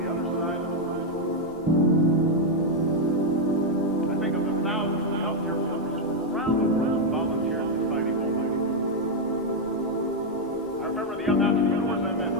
other side of the world. I think of the thousands of healthcare workers from around the world who volunteer in the fighting movement. I remember the young entrepreneurs I met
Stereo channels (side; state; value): both; normal; correlation 0.01